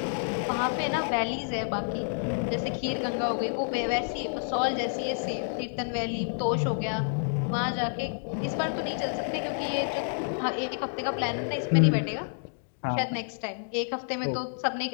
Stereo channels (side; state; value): right; silent; digital silence